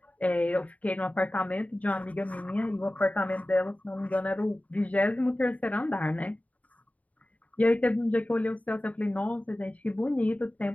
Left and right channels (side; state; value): right; late; 0.069 ms